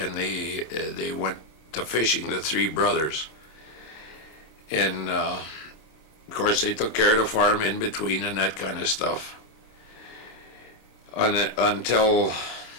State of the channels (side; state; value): right; late; 26 ms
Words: they went to fishing, the three brothers. And of course, they took care of the farm in between and that kind of stuff. Until